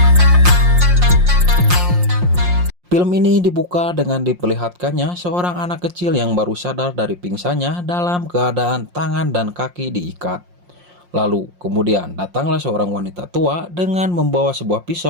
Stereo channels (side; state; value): left; late; 5.6 ms